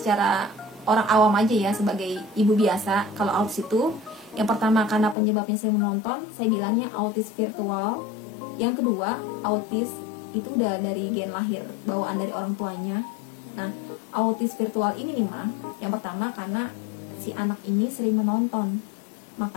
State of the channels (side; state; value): right; drops out; at 5.2 s